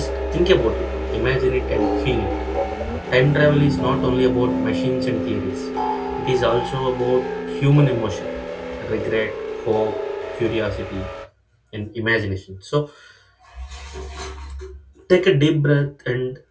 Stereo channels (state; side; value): identical; both; correlation 1.00